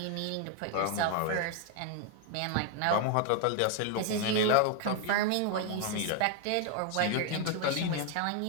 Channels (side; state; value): both; different; correlation 0.00